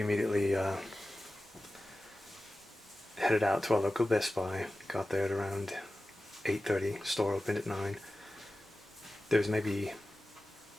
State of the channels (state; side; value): normal; both; correlation 0.95